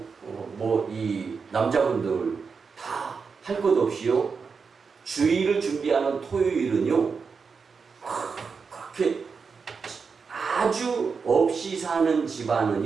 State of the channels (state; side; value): quieter; left; 5.4 dB